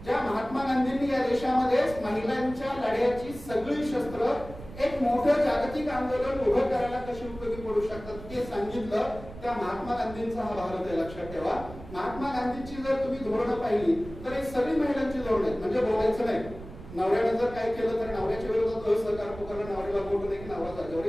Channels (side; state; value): right; noise; rumble, 15 dB below the sound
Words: ज्या महात्मा गांधींनी या देशामध्ये महिलांच्या लढ्याची सगळी शस्त्र एक मोठं जागतिक आंदोलन उभं करायला कशी उपयोगी पडू शकतात ते सांगितलं, त्या महात्मा गांधींचा हा भारत आहे. लक्षात ठेवा, महात्मा गांधींची जर तुम्ही धोरणं पाहिली तर हे सगळी महिलांची धोरणं आहेत. म्हणजे बोलायचं नाही, नवऱ्याने जर काय केलं तर नवऱ्याच्या विरोधात असहकार पुकारला, नवऱ्याला बोलू नये की नवरा जागेवर